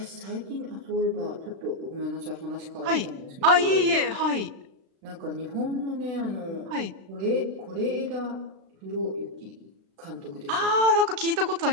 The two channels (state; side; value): late; left; 36 ms